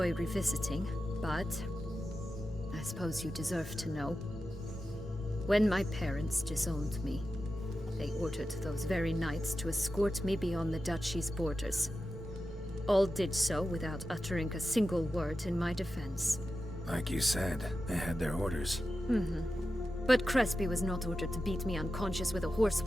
revisiting, but I suppose you deserve to know. When my parents disowned me, they ordered those very knights to escort me beyond the duchy's borders. All did so without uttering a single word in my defense. Like you said, they had their orders. But Crespi was not ordered to beat me unconscious with a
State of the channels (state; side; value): normal; both; correlation 0.92